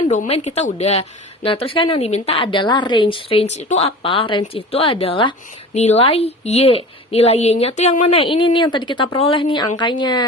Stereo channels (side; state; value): both; normal; correlation 0.37